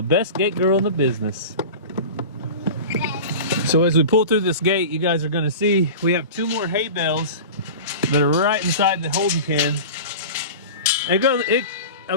best gate girl in the business. So as we pull through this gate, you guys are gonna see we have 2 more hay bales that are right inside the holding pen.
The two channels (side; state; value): both; inverted; correlation -0.32